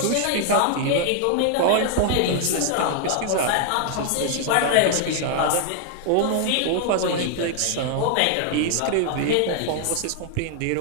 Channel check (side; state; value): both; different; correlation 0.00